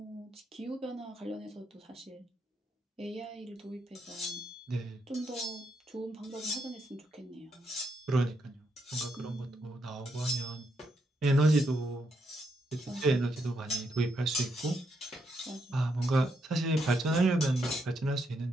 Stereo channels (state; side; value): normal; both; correlation 0.79